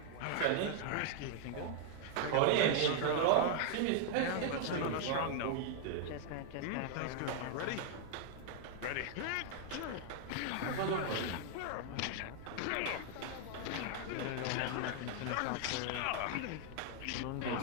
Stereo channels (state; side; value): different; both; correlation 0.00